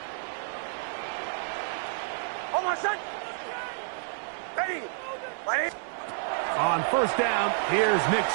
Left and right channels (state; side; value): silent; left; 57 dB below the other